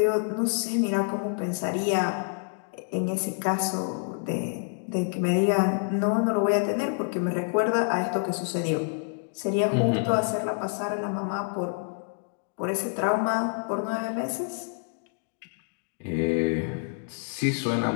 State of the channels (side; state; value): right; silent; 60 dB below the other